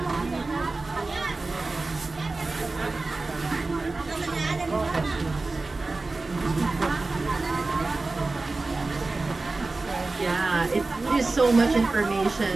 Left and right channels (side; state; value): left; quieter; 3.5 dB